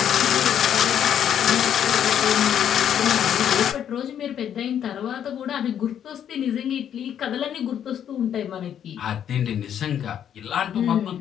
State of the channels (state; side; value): quieter; right; 9.4 dB